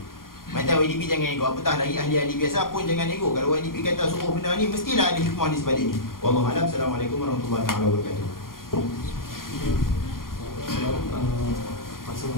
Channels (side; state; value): right; late; 0.91 ms